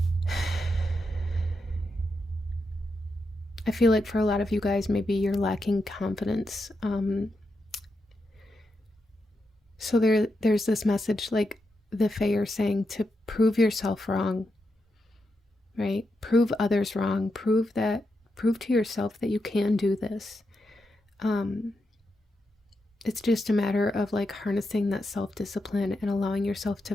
I feel like for a lot of you guys, maybe you're lacking confidence. So there's this message, like the Fae are saying, to prove yourself wrong, right? Prove others wrong. Prove to yourself that you can do this. It's just a matter of like harnessing that self-discipline and allowing yourself to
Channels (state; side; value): normal; both; correlation 0.85